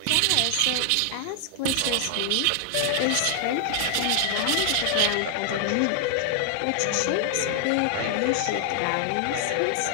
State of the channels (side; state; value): both; different; correlation 0.00